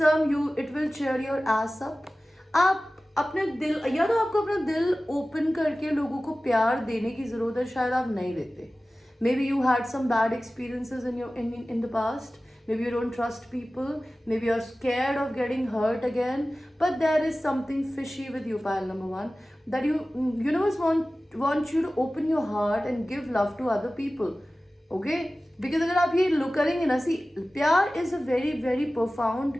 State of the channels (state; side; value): normal; both; correlation 0.96